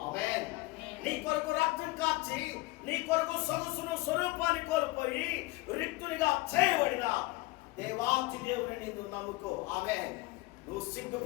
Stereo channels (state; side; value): quieter; right; 21.4 dB